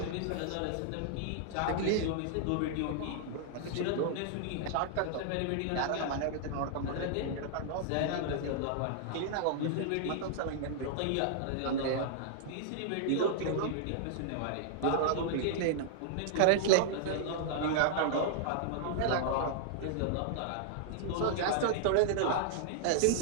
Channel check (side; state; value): both; different; correlation -0.01